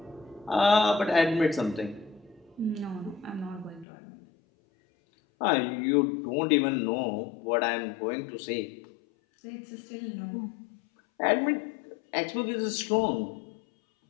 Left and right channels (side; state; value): right; drops out; at 3.9 s